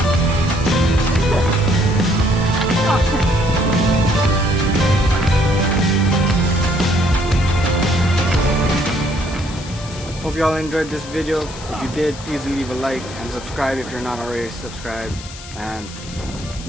Hope you all enjoyed this video. If you did, please leave a like and subscribe if you're not already subscribed. and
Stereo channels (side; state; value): left; noise; hiss, 15 dB below the sound